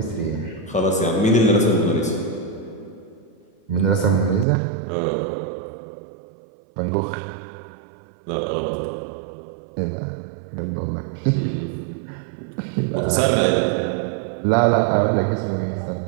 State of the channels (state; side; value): drops out; left; at 4.5 s